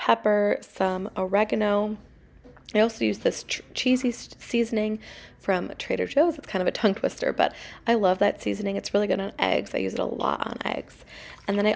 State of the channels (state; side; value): identical; both; correlation 1.00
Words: some oregano. I also use this cheesy seasoning from Trader Joe's. It's kind of a tongue twister, but I love that seasoning. It's really good on eggs. I use it a lot on eggs. And then I